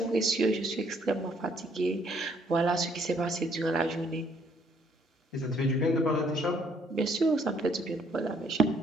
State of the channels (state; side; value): normal; both; correlation 0.66